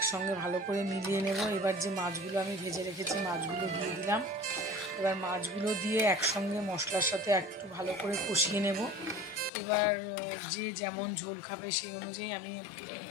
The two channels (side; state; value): right; drops out; at 9.5 s